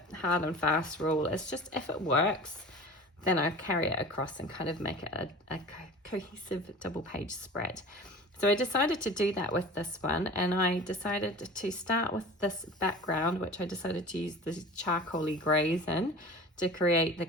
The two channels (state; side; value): normal; both; correlation 0.38